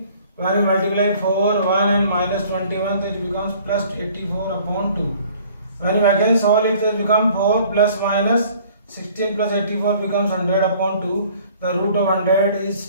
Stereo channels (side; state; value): both; inverted; correlation -0.54